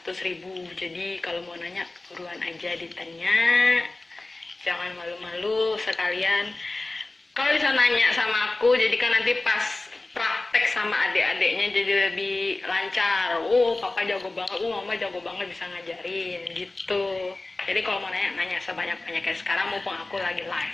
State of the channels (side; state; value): right; quieter; 3.0 dB